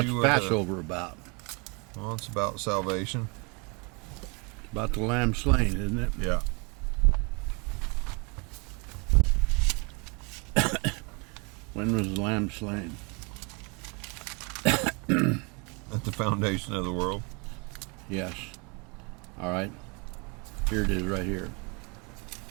Passover about? Well, it's about salvation. It's about the lamb slain, isn't it? Yeah. When was the lamb slain? At the foundation of the world. Yes. All right. Here it is right here.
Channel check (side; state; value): left; quieter; 31.3 dB